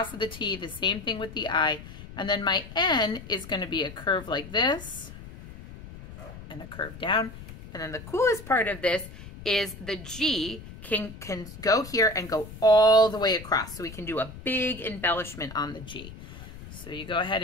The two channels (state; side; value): noise; left; rumble, 14 dB below the sound